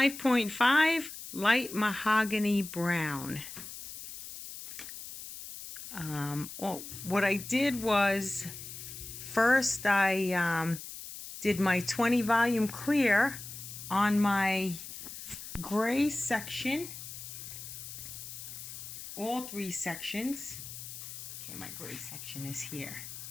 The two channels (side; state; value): left; noise; hiss, 11 dB below the sound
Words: light mahogany brown. What I did was, first I did my 20 volume clear on my gray section. All 3 sections. Okay, my gray section is here.